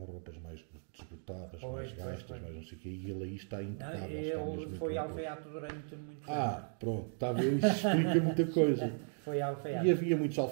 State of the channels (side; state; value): left; silent; 54 dB below the other